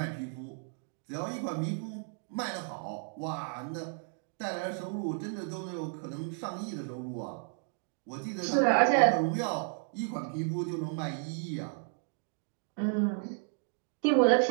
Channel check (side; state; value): left; silent; 56 dB below the other